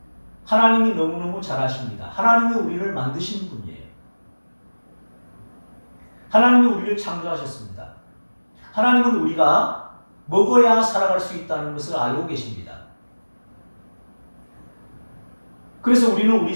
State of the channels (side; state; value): both; inverted; correlation -1.00